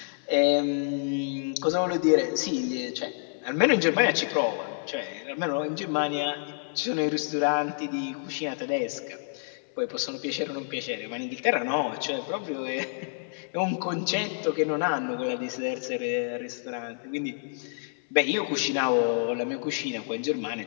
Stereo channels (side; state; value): right; silent; 59 dB below the other